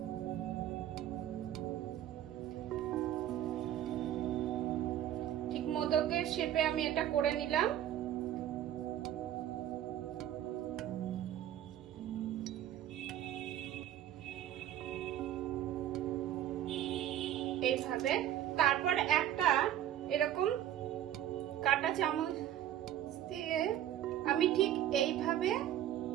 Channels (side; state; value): left; quieter; 11.7 dB